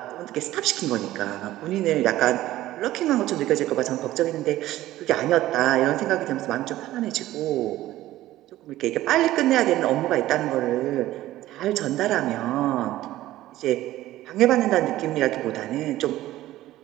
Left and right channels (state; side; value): quieter; left; 15.2 dB